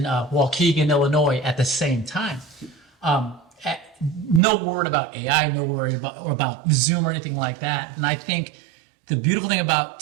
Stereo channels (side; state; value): left; drops out; at 4.4 s